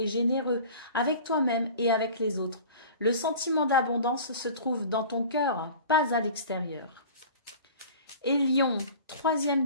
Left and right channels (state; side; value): inverted; both; correlation -0.41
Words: généreux avec toi-même et avec les autres. Le sentiment d'abondance se trouve dans ton cœur, pas à l'extérieur. Et Lion, troisième